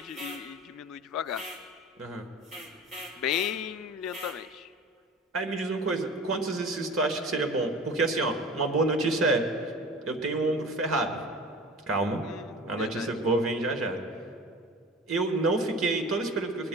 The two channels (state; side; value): normal; both; correlation 0.37